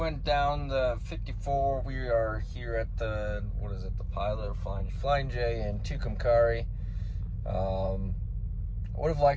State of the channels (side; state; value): both; identical; correlation 1.00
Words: down the 54. We are here at the, what is it, the Pilot or Flying J in Tucumcari. I would have